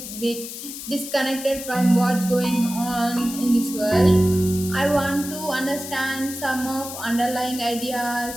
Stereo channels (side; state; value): left; noise; hiss, 10 dB below the sound